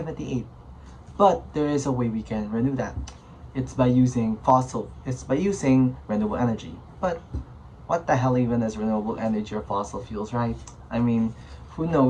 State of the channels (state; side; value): identical; both; correlation 1.00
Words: But there is a way we can renew that. It's by using renewable energy. But what the hell even is renewable energy or fossil fuels, right? I mean, who